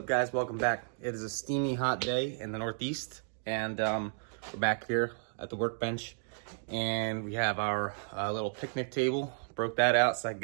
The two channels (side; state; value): left; silent; digital silence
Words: guys? Welcome back. It is a steamy hot day in the Northeast, and we're back here at the workbench, and we have our little picnic table. Broke that out so I can